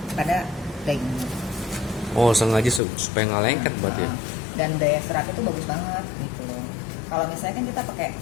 pada dagingnya. Oh, sengaja supaya nggak lengket berarti ya? Dan daya seratnya itu bagus banget gitu loh. Kalau misalnya kan kita pakai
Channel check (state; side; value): drops out; right; at 2.8 s